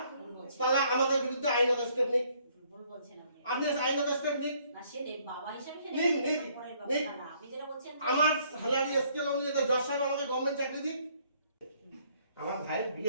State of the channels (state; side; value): inverted; both; correlation -0.65